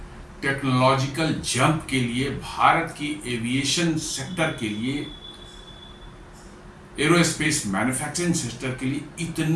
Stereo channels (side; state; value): both; identical; correlation 1.00